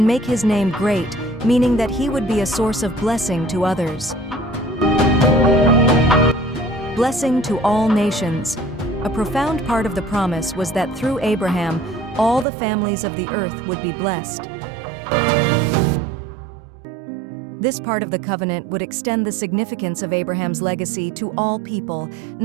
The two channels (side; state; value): left; drops out; at 12.5 s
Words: make his name great, meaning that he would be a source of blessing to others. Blessing to all nations. A profound part of the promise was that through Abraham, all the families of the earth would be blessed. This part of the covenant would extend the significance of Abraham's legacy to all people,